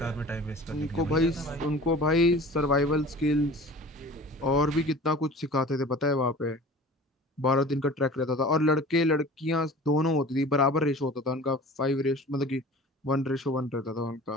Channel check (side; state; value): both; normal; correlation 0.41